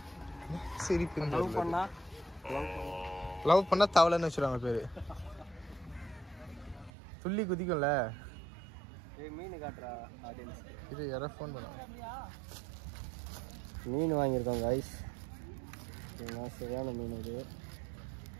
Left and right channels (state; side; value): drops out; left; at 6.9 s